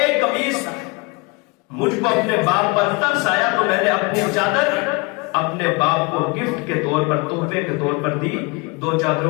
قمیص تھا، مجھ کو اپنے باپ پر ترس آیا تو میں نے اپنی چادر اپنے باپ کو گفٹ کے طور پر، تحفے کے طور پر دی، 2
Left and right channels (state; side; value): quieter; right; 27.3 dB